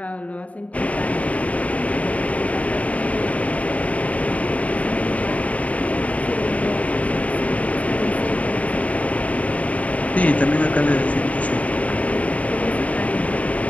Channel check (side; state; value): right; late; 0.068 ms